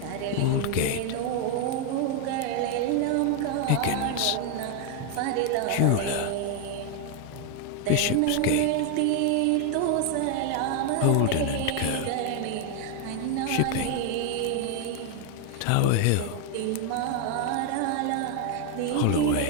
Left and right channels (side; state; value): both; different; correlation 0.01